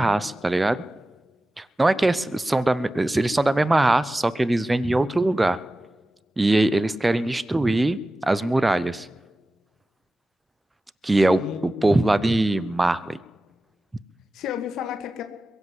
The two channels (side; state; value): both; normal; correlation 0.95